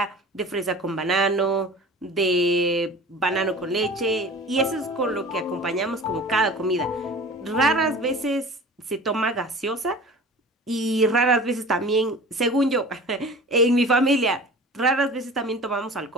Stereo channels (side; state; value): both; normal; correlation 0.40